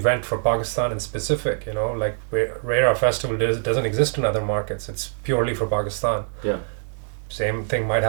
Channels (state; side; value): silent; left; digital silence